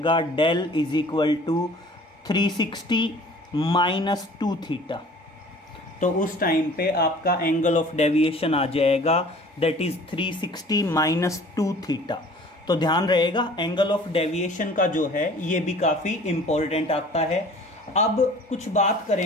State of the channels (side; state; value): both; normal; correlation 0.48